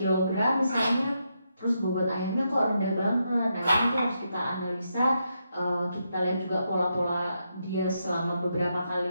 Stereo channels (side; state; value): both; inverted; correlation -0.82